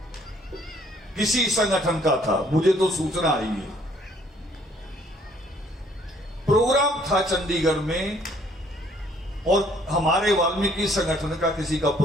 किसी संगठन का था, मुझे तो सूचना आई है। प्रोग्राम था चंडीगढ़ में, और हमारे वाल्मीकि संगठन का किसी का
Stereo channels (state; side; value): normal; both; correlation 0.62